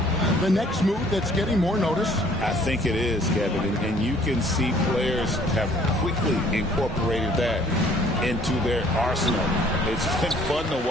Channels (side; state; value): both; normal; correlation 0.58